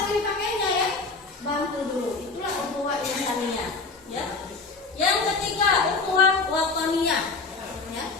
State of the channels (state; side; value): quieter; right; 4.1 dB